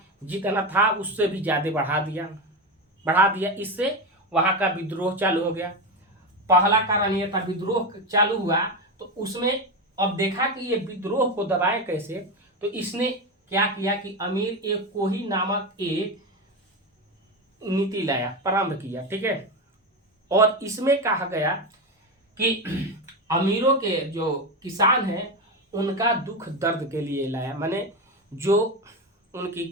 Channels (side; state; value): both; normal; correlation 0.16